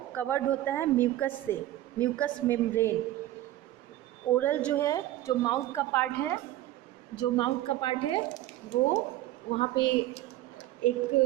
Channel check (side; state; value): left; quieter; 14.8 dB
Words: कवर्ड होता है म्यूकस से, म्यूकस मेम्ब्रेन. ओरल जो है, जो माउथ का पार्ट है, वो वहाँ पे